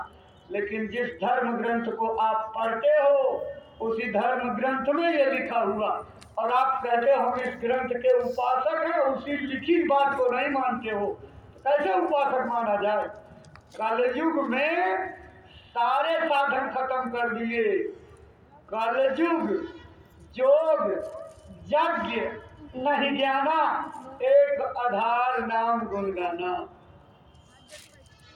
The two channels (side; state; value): both; identical; correlation 1.00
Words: लेकिन जिस धर्म ग्रंथ को आप पढ़ते हो उसी धर्म ग्रंथ में ये लिखा हुआ और आप कहते हो हम इस ग्रंथ के उपासक हैं, उसी लिखी बात को नहीं मानते हो, कैसे उपासक माना जाए? कलयुग में सारे साधन खत्म कर दिए। कलयुग जोग यज्ञ नहीं जाना, एक आधार नाम गुनगाना।